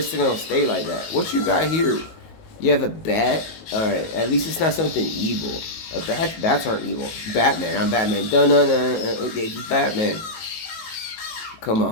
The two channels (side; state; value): right; late; 19 ms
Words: still gonna stay like that. What you got here? You have a bat? Alright, at least it's not something evil. Bats aren't evil. Batman, I'm Batman. Dun-dun-dun. Okay, just Batman. Come